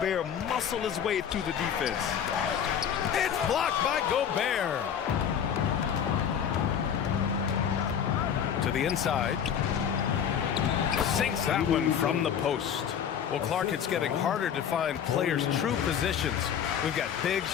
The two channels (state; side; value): quieter; right; 8.4 dB